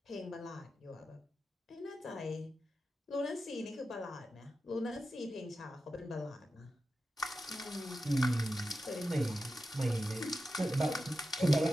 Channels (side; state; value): both; normal; correlation 0.91